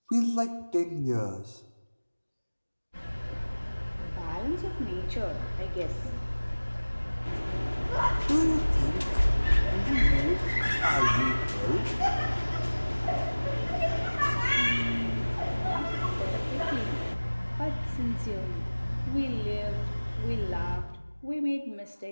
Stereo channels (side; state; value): both; inverted; correlation -1.00